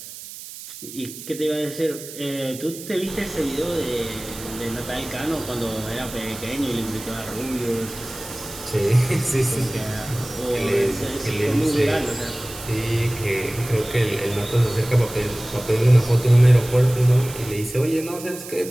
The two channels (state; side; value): noise; right; hiss, 13 dB below the sound